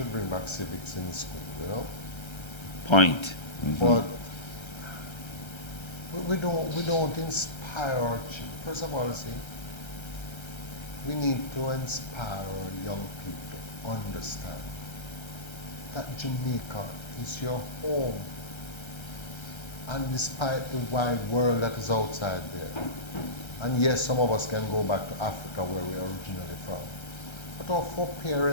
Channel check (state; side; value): late; right; 1.3 ms